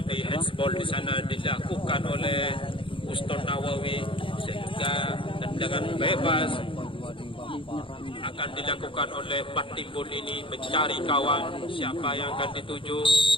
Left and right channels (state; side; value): late; right; 0.25 ms